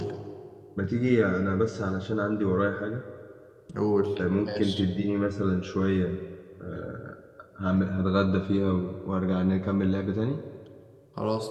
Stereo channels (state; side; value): identical; both; correlation 1.00